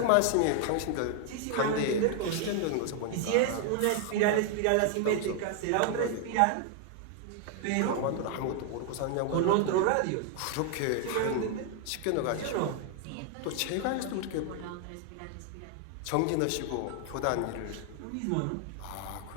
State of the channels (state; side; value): different; both; correlation 0.00